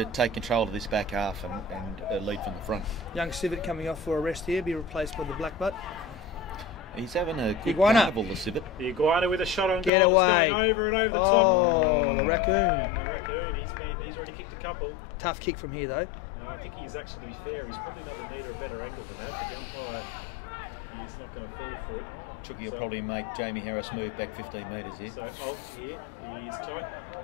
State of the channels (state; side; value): drops out; right; at 9.9 s